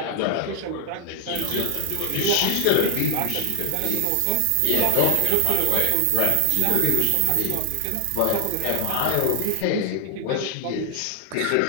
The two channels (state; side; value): different; both; correlation 0.00